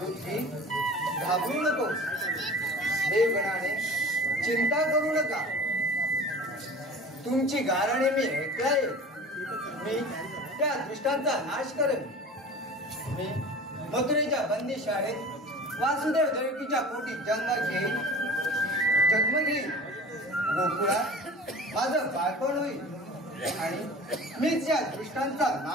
घाबरू नको, देवगणाने चिंता करू नका. तुमची गारणे मी ऐकलाय. मी त्या दुष्टांचा नाश करेन. मी मथुरेच्या बंदी शाळेत वासुदेव देवकीच्या पोटी जन्म घेईन. गोकुळात माझं बाळपण होईल आणि मीच या दुष्टांचा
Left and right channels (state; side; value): normal; both; correlation 0.40